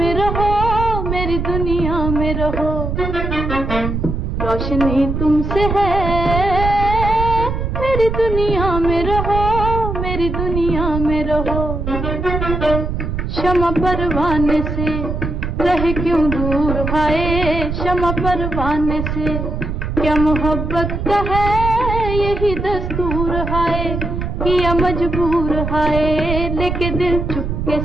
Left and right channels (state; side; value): noise; right; rumble, 3 dB below the sound